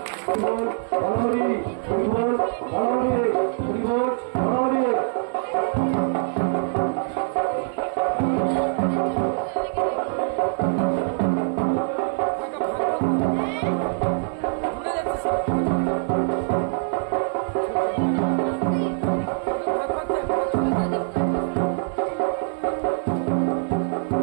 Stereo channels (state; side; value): silent; left; digital silence